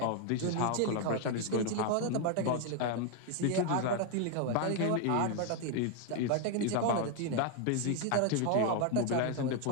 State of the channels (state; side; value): different; both; correlation 0.01